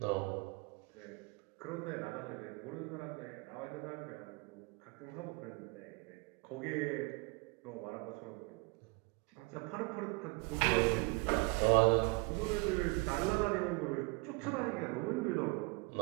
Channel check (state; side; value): quieter; left; 27.5 dB